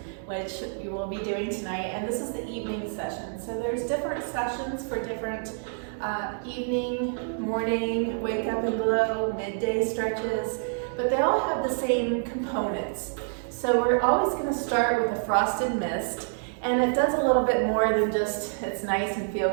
which you will be doing tonight. And this is the evening session. So there's different sessions for different evening, morning, wake up and glow, midday stretches, but they all have the same components. So we're always going to start with a frosted mist, and it does a little bit more than just it's nice and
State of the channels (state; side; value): silent; left; 60 dB below the other